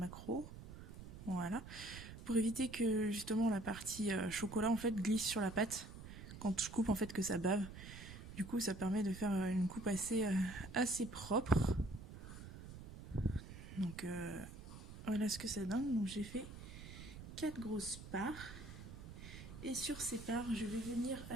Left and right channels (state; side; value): noise; right; rumble, 12 dB below the sound